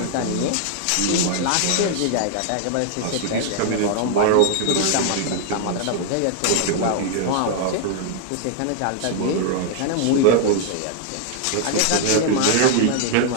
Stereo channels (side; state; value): both; different; correlation 0.00